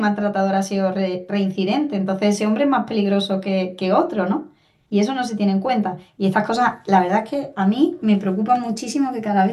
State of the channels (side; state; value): both; identical; correlation 1.00